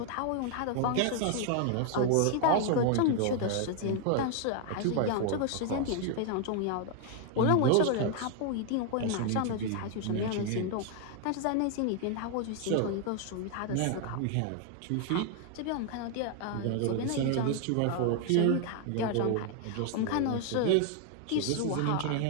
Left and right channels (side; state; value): both; different; correlation 0.00